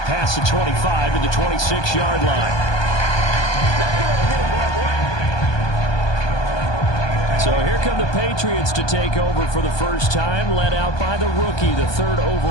the 25 to the 26-yard line. So here come the Patriots to take over for the first time, led out by the rookie, the third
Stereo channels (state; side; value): late; right; 1.2 ms